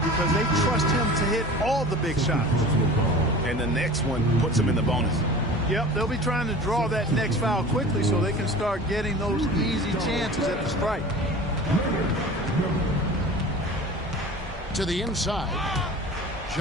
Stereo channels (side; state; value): both; normal; correlation 0.39